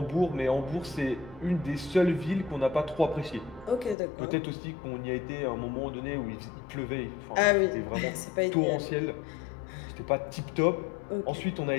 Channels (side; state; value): right; drops out; at 4.0 s